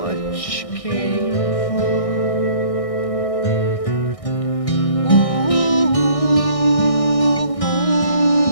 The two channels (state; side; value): late; right; 1.6 ms